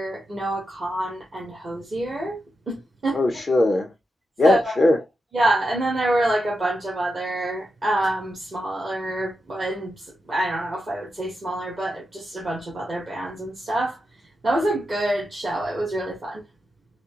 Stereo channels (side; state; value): both; normal; correlation 0.87